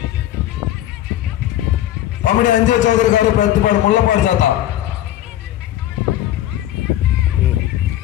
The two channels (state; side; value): quieter; right; 13.2 dB